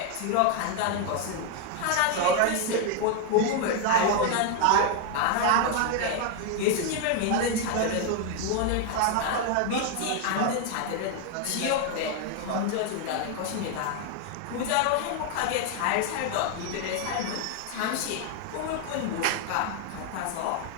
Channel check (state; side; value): different; both; correlation 0.01